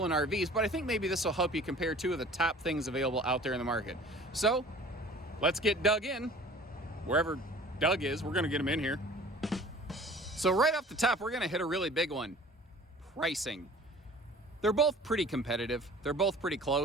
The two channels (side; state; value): both; normal; correlation 0.46